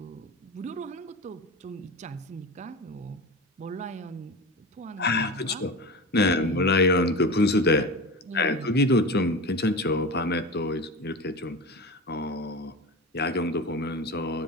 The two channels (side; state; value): both; normal; correlation 0.27